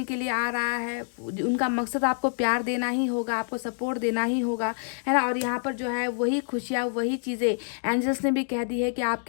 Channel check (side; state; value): right; silent; digital silence